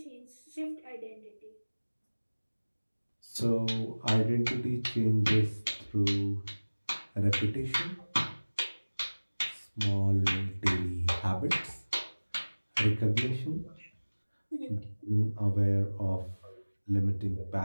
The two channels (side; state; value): both; inverted; correlation -1.00